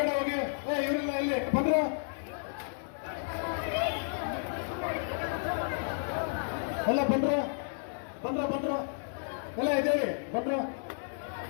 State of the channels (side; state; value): right; silent; 56 dB below the other